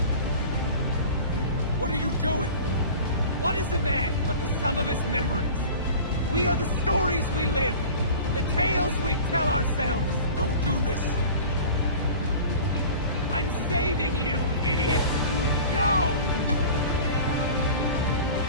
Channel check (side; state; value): both; inverted; correlation -0.39